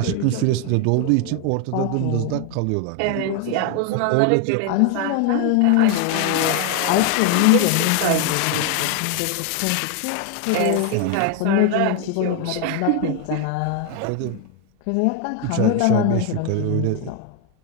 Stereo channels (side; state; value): both; different; correlation 0.01